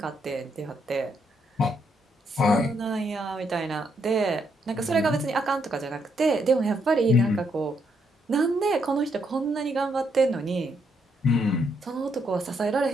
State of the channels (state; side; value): normal; both; correlation 0.76